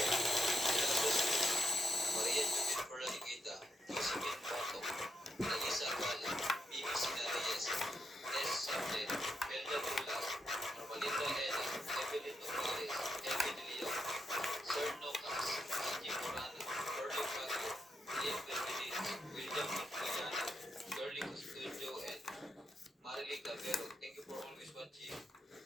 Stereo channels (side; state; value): both; normal; correlation 0.83